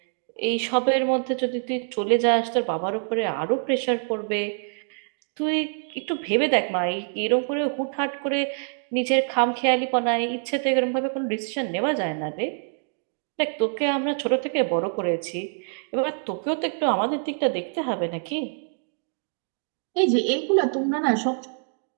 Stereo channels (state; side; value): silent; left; 61 dB below the other